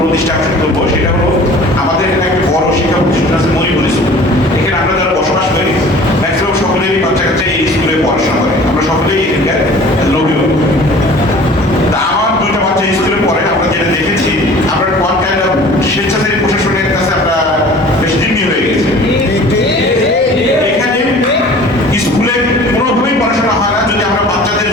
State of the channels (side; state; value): both; normal; correlation 0.46